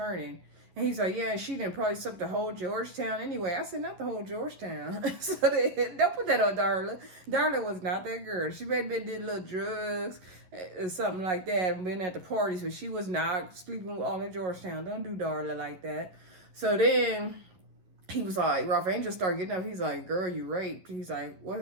And he's like, yeah, she didn't probably suck the whole Georgetown anyway. I said, not the whole Georgetown. So don't put that on Darla. Darla was not that girl. She may have been did little drugs or something like that and been at the parties, but she was not sleeping with all in Georgetown. Don't do Darla like that. So then he was like, Ralph Angel started getting up. He's like, girl, you raped. He's like,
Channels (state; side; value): late; left; 11 ms